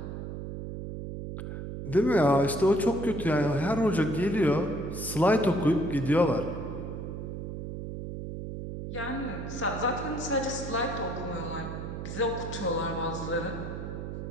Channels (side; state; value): right; noise; hum, 7 dB below the sound